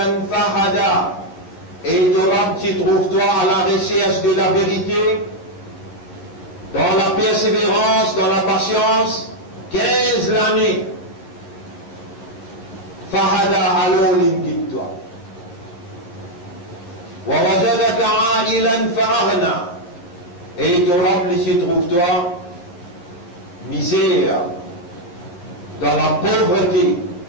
fahada. Et ton Rab, tu trouves toi à la recherche de la vérité, dans la persévérance, dans la patience, 15 l'année. Fahada alors l'inguide-toi. Wa wajadaka a'ilan fa'aghna. Et ton Rab, tu trouves toi misère, dans la pauvreté,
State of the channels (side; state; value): right; late; 12 ms